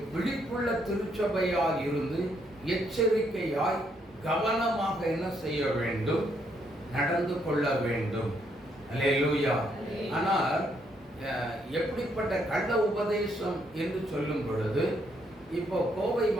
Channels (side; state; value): both; normal; correlation 0.73